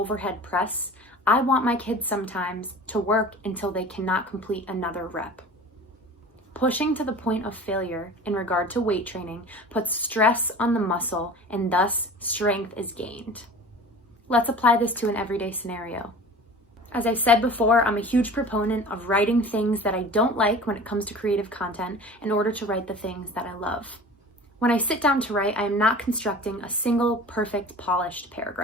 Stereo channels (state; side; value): normal; both; correlation 0.40